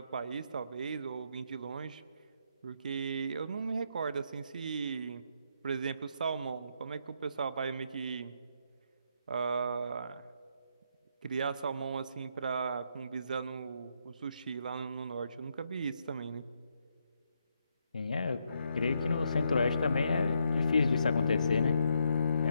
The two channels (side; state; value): both; inverted; correlation -0.77